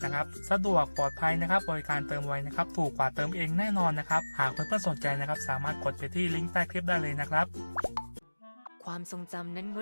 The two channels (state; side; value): inverted; both; correlation -1.00